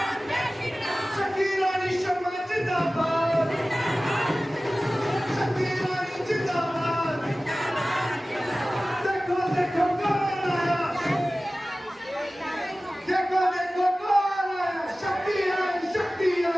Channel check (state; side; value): normal; both; correlation 0.97